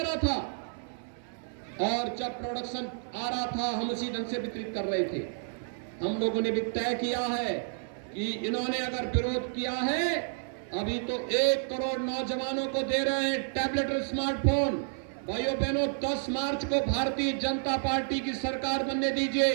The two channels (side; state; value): left; silent; 58 dB below the other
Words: रहा था, और जब प्रोडक्शन आ रहा था हम उसी ढंग से वितरित कर रहे थे। हम लोगों ने भी तय किया है कि इन्होंने अगर विरोध किया है, अभी तो 1 करोड़ नौजवानों को दे रहे हैं टैबलेट और स्मार्टफोन। भाइयों बहनों, 10 मार्च को भारतीय जनता पार्टी की सरकार बनने